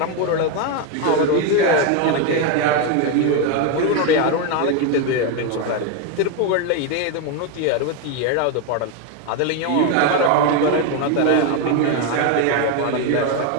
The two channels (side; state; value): both; different; correlation 0.02